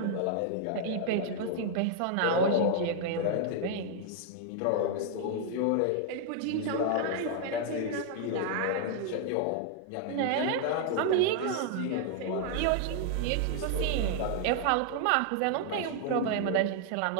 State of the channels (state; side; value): different; both; correlation -0.01